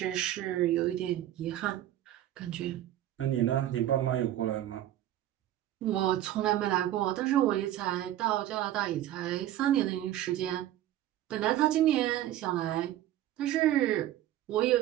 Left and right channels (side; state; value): left; quieter; 13.0 dB